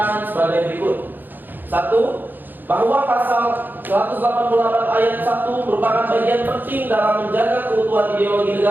sebagai berikut. 1. Bahwa pasal 188 ayat 1 merupakan bagian penting dalam menjaga keutuhan ideologi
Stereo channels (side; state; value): left; late; 0.089 ms